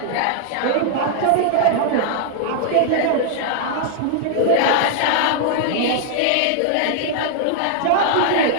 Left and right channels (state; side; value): different; both; correlation 0.00